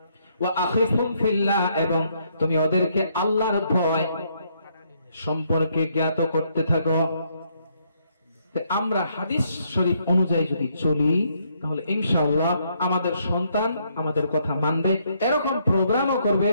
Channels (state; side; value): inverted; both; correlation -0.72